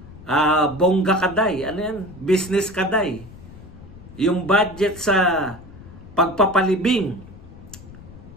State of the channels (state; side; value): noise; left; rumble, 18 dB below the sound